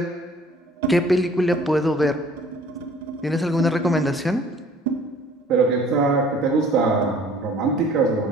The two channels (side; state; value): both; normal; correlation 0.53